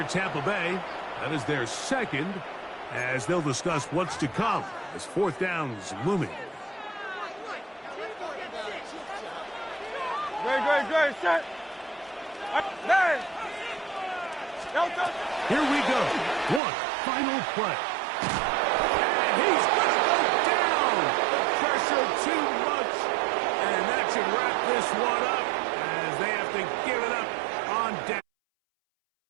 Tampa Bay. That is their second, as they'll discuss what's to come as fourth down is looming. Great, set. Nine. Here we go. One final play. And he's going to go down. The pressure too much. And that should wrap this one up as they have to give it up on down.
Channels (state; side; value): drops out; left; at 16.6 s